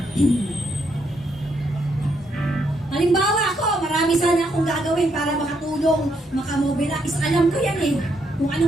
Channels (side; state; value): both; normal; correlation 0.76